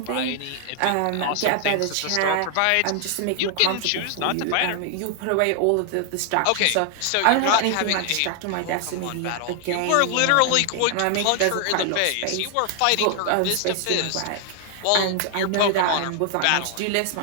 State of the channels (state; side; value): different; both; correlation 0.00